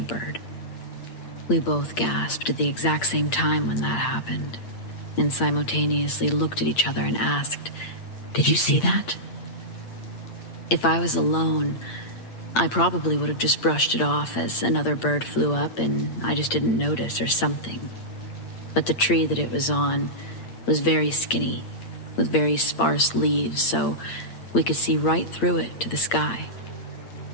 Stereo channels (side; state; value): right; late; 8.7 ms